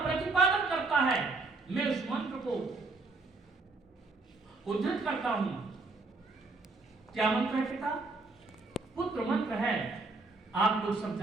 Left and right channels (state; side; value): quieter; left; 3.6 dB